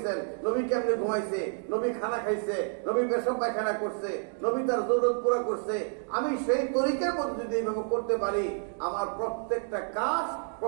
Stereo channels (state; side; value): silent; left; 55 dB below the other